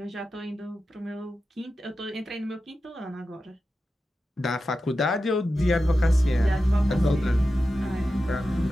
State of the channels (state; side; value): normal; both; correlation 0.92